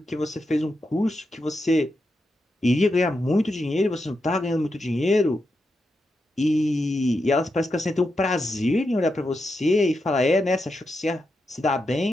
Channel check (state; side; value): normal; both; correlation 0.86